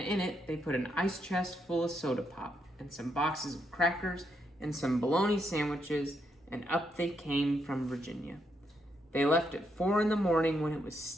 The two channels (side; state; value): both; normal; correlation 0.78